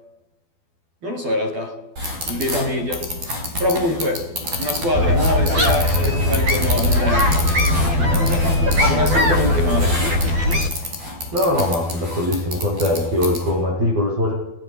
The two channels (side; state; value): left; late; 12 ms